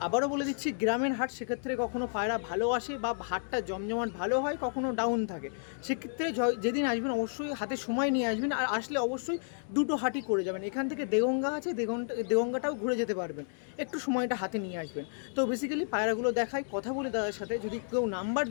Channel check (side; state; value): right; silent; digital silence